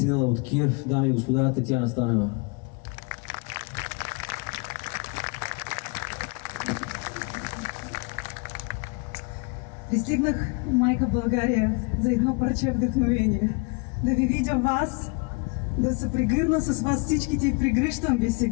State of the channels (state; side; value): quieter; right; 30.9 dB